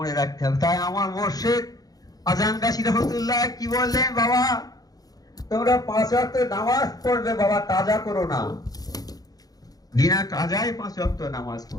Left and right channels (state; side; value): late; right; 0.18 ms